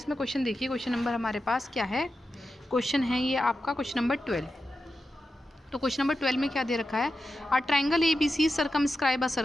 question देखिए, question number हमारे पास क्या है, question है ये आपका question number 12. तो क्वेश्चन नंबर 12 में क्या दे रखा है, a triangle ABC circumscribe a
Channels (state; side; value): normal; both; correlation 0.90